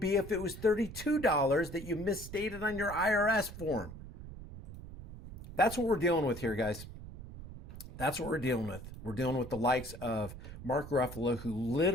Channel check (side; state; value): right; noise; rumble, 12 dB below the sound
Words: if it was $32 that you misstated on your IRS form. That's what we're dealing with here, guys. That's what we're dealing with. We're dealing with the likes of Mark Ruffalo, who